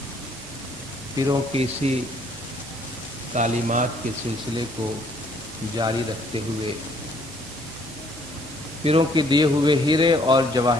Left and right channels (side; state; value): both; normal; correlation 0.63